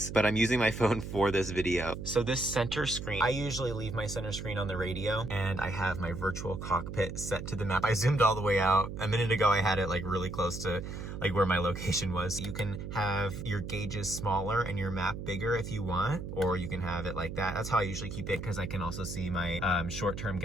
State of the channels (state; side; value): noise; right; hum, 7 dB below the sound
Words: but I'm using my phone for this video. So this center screen, I usually leave my center screen on the radio, and I have my virtual cockpit set to the map. I zoomed all the way out. A minute ago, I had it like really close to like where my location was. You can have your gauges smaller and your map bigger if you want, or you can have it like that. That's how I usually keep it because I can also see my short-term